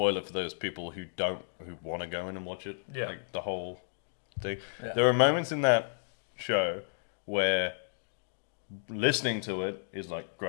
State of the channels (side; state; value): right; silent; digital silence